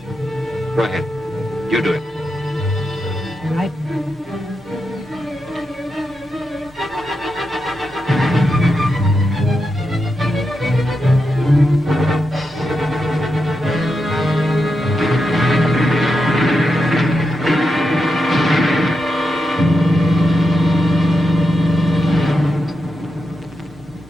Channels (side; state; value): both; normal; correlation 0.87